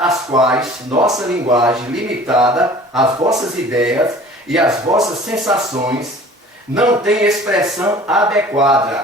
as quais nossa linguagem limitada, as vossas ideias e as vossas sensações não tem expressão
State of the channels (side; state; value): both; normal; correlation 0.46